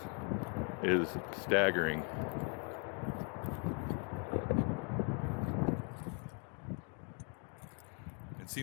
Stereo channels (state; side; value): quieter; right; 35.9 dB